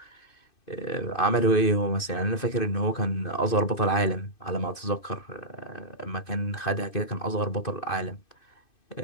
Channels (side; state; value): right; late; 2.5 ms